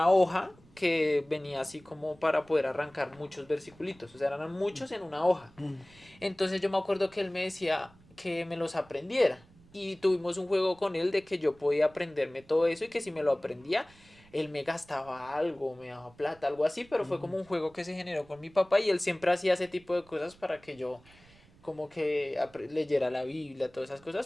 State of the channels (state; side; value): noise; right; rumble, 27 dB below the sound